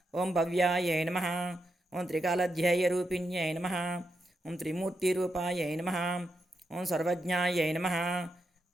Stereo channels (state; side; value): normal; both; correlation 0.84